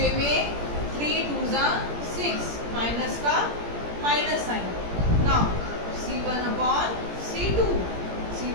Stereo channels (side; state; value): left; late; 17 ms